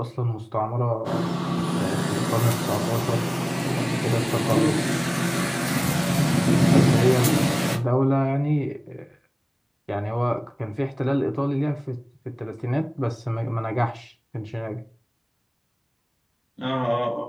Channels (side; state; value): both; identical; correlation 1.00